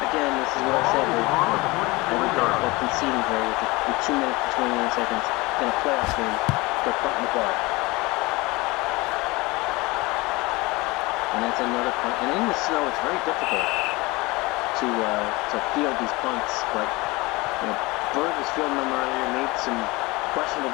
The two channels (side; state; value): right; quieter; 23.0 dB